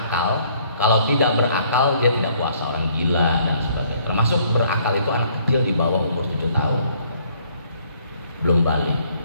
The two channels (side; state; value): both; inverted; correlation -0.63